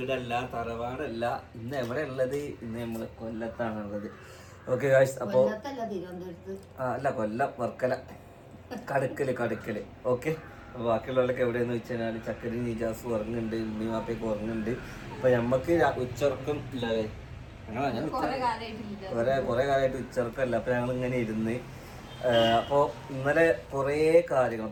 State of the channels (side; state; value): both; identical; correlation 1.00